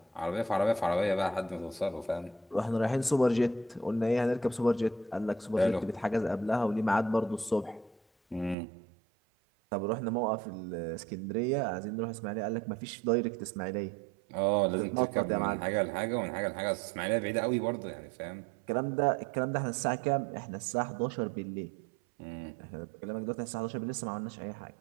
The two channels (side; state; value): left; drops out; at 8.6 s